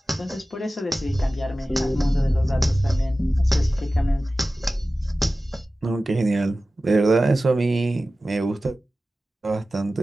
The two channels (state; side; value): normal; both; correlation 0.95